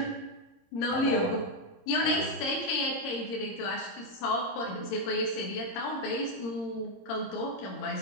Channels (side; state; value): right; late; 26 ms